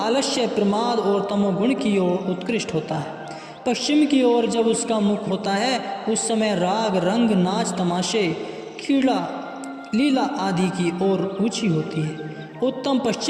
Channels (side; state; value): both; identical; correlation 1.00